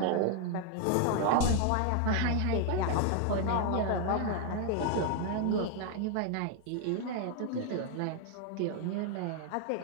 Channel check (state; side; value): different; both; correlation 0.00